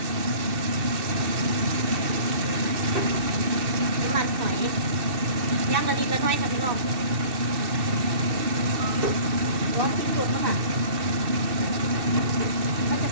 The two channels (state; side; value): late; left; 2.6 ms